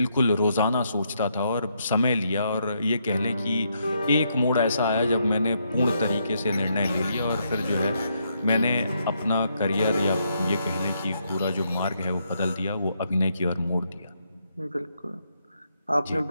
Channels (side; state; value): both; inverted; correlation -0.77